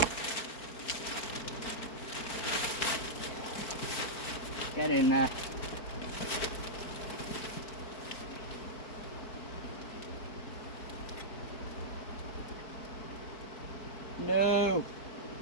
Get in there. No.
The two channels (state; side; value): late; right; 4.4 ms